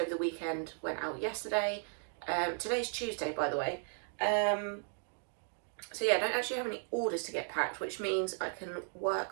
the weekend went out yesterday. Today's Tuesday, by the way. So yeah, I don't actually have any orders to get packed, which means I can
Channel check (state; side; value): silent; left; 54 dB below the other